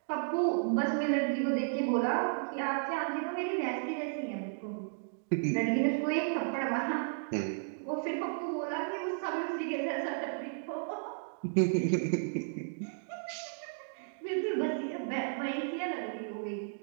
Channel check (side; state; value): left; silent; digital silence